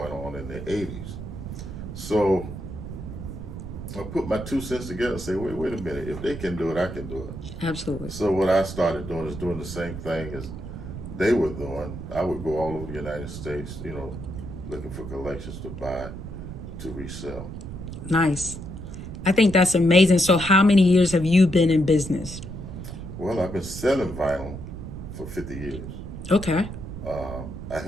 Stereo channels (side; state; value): right; noise; rumble, 9 dB below the sound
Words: on in the '80s. So I put my 2 cents together and say, wait a minute, if they can do it, I can do it. Absolutely. So what I started doing is doing the same thing as they were doing. I would go all over the United States, looking for collections to buy, to resell. Nice. I think that's amazing. So, how many years have you been in business? Well, I've been selling vinyl for 50 years. Okay. I